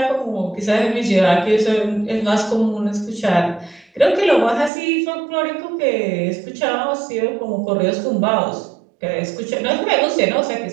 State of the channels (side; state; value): left; drops out; at 4.7 s